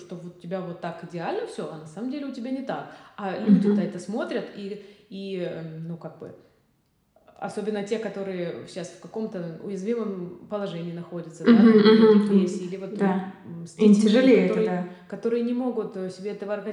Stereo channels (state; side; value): identical; both; correlation 1.00